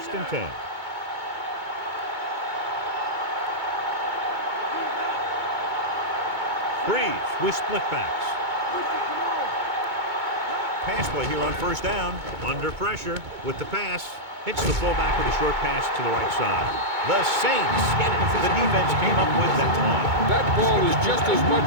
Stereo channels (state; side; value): late; left; 2.2 ms